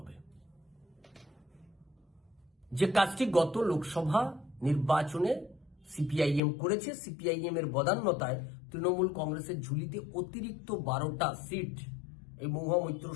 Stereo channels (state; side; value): drops out; right; at 6.4 s